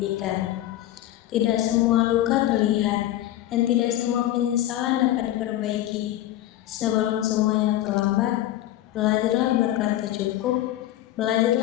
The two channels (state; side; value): quieter; right; 13.8 dB